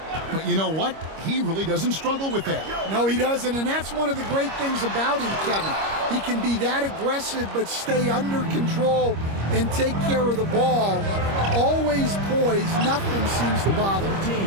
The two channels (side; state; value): left; late; 25 ms